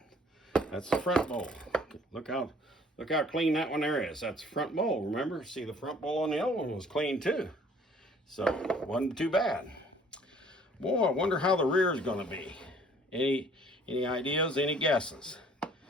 That's the front bowl. Look how clean that one there is. That's the front bowl, remember? See, the front bowl on the other one was clean too. So, wasn't too bad. Boy, I wonder how the rear is gonna be. Any ideas, any guesses?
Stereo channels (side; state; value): both; normal; correlation 0.56